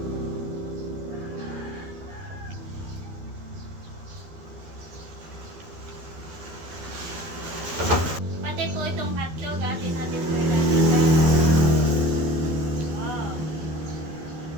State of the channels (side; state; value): left; late; 12 ms